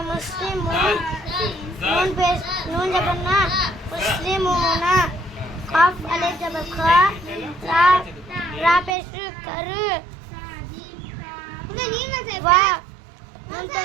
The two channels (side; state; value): left; drops out; at 9.0 s